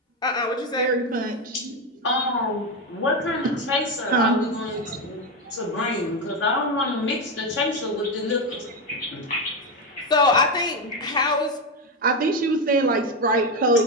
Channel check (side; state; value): both; normal; correlation 0.10